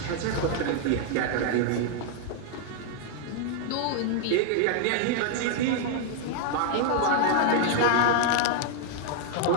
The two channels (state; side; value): different; both; correlation 0.00